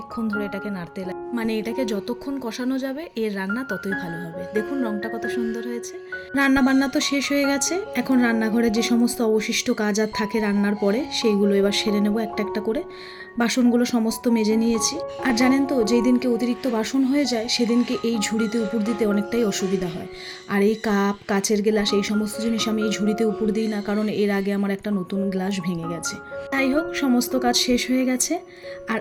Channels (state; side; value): identical; both; correlation 1.00